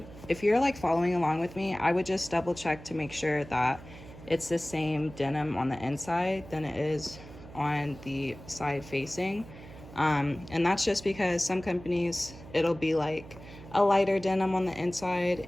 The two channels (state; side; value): noise; right; hum, 17 dB below the sound